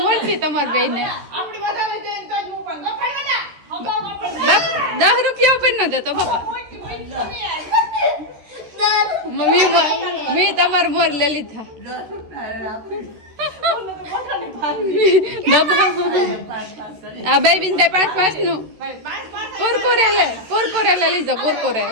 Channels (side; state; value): left; late; 13 ms